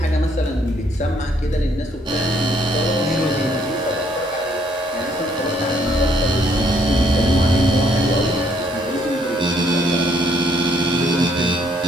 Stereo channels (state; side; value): normal; both; correlation 0.68